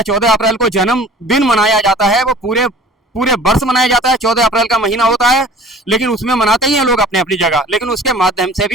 14 अप्रैल को जन्मदिन मनाया जाता है। वो पूरे वर्ष मनाया जाता है, 14 अप्रैल का महीना होता है, लेकिन उसमें मनाते ही हैं लोग अपनी अपनी जगह, लेकिन उसके माध्यम से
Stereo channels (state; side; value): normal; both; correlation 0.46